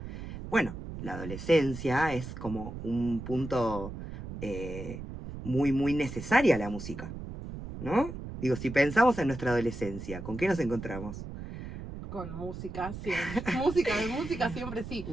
Bueno, la adolescencia es como un punto muy, muy necesaria la música, ¿no? Digo, si pensamos en nuestra adolescencia, ¿con qué nos encontramos? Con música, siempre. Música siempre sí.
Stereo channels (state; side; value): noise; right; rumble, 9 dB below the sound